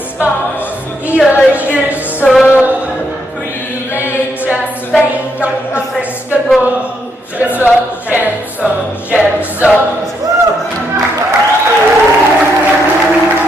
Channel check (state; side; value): normal; both; correlation 0.77